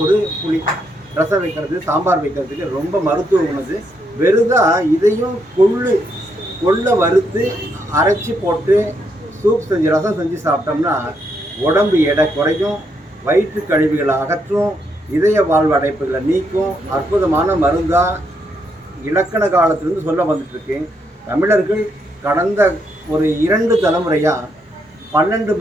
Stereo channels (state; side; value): normal; both; correlation 0.77